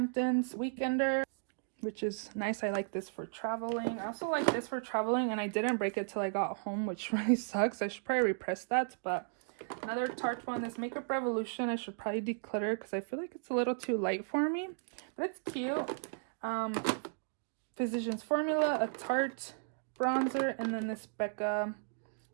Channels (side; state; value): left; silent; digital silence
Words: Weekender, which is nice. I like this for traveling. I also like this for traveling, and I didn't break it till I got home, which really sucks. I should probably repress that, but another Tarte one, this Makeup Revolution. I should probably declutter because I feel like it's a little too light for me, but it's cute. Physicians Formula, a Tarte bronzer, and then this Becca